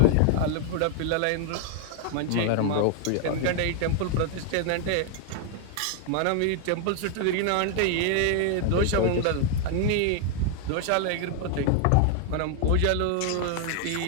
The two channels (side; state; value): both; different; correlation 0.00